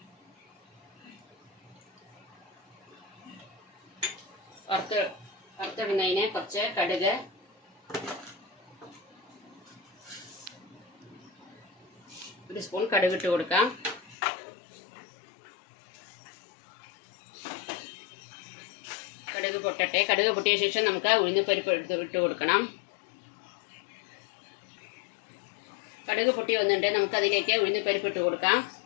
വറുത്തിടുന്നതിന് കുറച്ച് കടുക്, ഒരു സ്പൂൺ കടുക് ഇട്ട് കൊടുക്കാം. കടുക് പൊട്ടട്ടെ. കടുക് പൊട്ടിയ ശേഷം നമുക്ക് ഉഴുന്നുപരിപ്പ് ഇട്ട് കൊടുക്കണം. കടുക് പൊട്ടി വന്നിട്ട് നമുക്ക് അതിലേക്ക് ഉഴുന്നുപരിപ്പ് ഇട്ട് കൊടുക്കാം.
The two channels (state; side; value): drops out; right; at 14.2 s